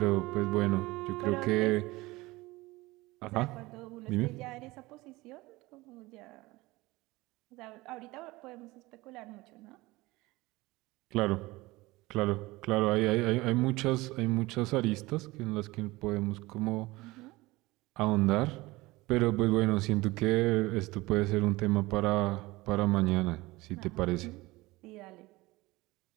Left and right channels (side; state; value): left; quieter; 20.7 dB